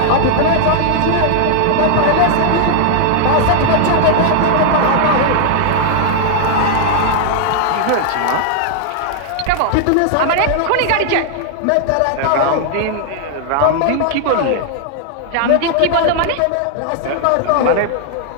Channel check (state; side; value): different; both; correlation 0.00